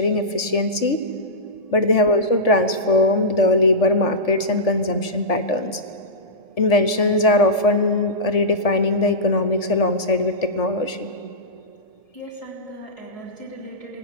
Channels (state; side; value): late; right; 1.7 ms